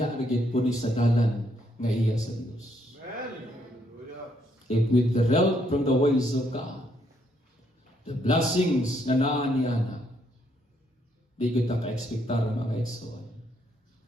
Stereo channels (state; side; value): normal; both; correlation 0.73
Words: na gyud pud sa dalan nga iya sa Dios. If with the help from the ways of God, the blessings na naa niya na, di kita ka-expectar mga igsoon.